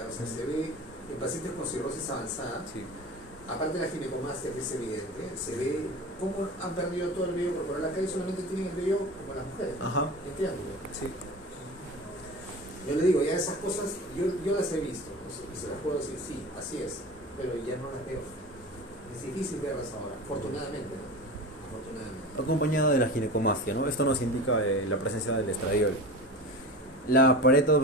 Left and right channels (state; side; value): normal; both; correlation 0.32